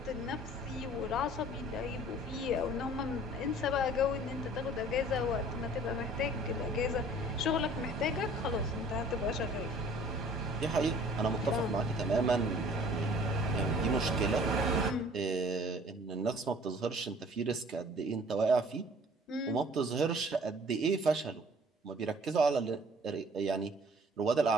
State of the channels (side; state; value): both; normal; correlation 0.52